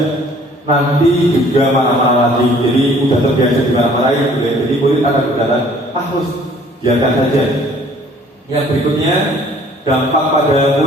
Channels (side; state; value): both; normal; correlation 0.56